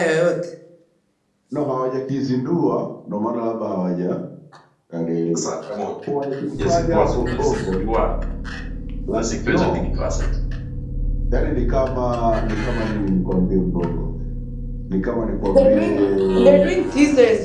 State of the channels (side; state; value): both; identical; correlation 1.00